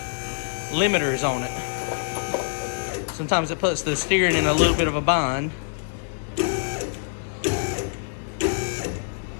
limiters on it. Sometimes it puts the steering in a little bit of a bind.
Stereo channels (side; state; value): right; silent; 62 dB below the other